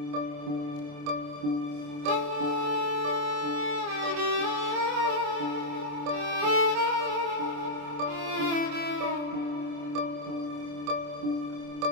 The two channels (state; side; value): late; left; 27 ms